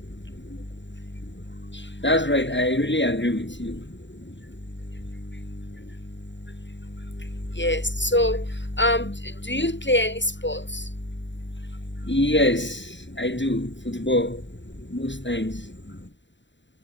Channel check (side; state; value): right; late; 0.53 ms